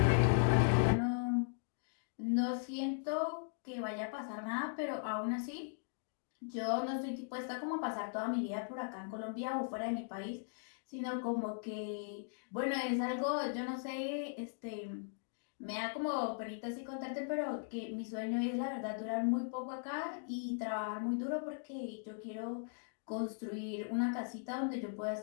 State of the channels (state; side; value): silent; right; digital silence